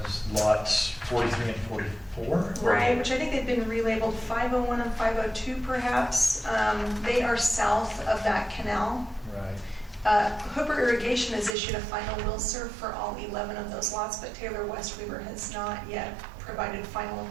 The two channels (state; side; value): drops out; left; at 11.6 s